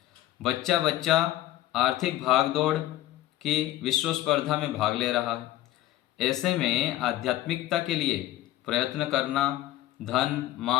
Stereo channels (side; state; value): right; quieter; 14.7 dB